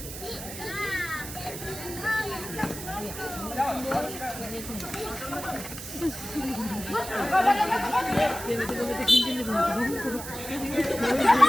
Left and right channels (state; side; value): noise; right; hiss, 10 dB below the sound